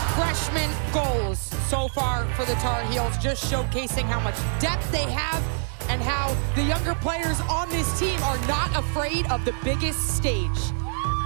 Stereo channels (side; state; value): left; silent; digital silence